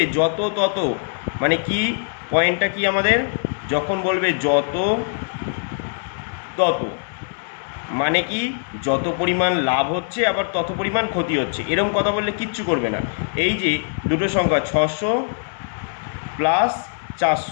যত তত, মানে কি পয়েন্টটা কি আমাদের? যখন বলবে যত তত মানে কি যত পরিমাণ লাভ হচ্ছে আবার তত পরিমাণ ক্ষতি হচ্ছে, এরকম কথা বললে কিচ্ছু করবে না। এই যে দুটো সংখ্যা 600 প্লাস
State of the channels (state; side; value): silent; right; 58 dB below the other